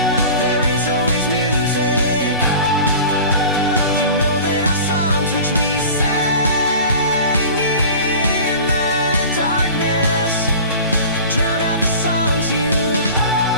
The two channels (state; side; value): inverted; both; correlation -0.38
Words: There is always music. You know that our songs which we sang in the darkness drown out the songs you